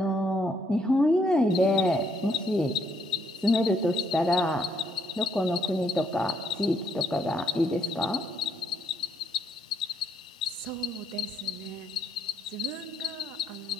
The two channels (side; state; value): both; normal; correlation 0.72